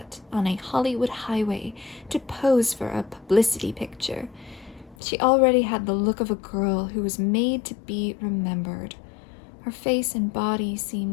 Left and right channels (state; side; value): drops out; right; at 5.0 s